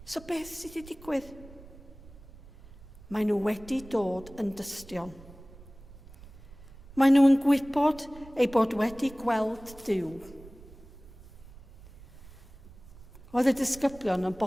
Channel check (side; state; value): right; noise; rumble, 20 dB below the sound